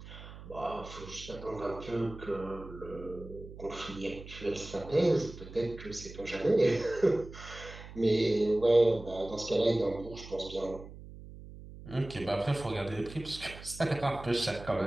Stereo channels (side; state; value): right; noise; hum, 15 dB below the sound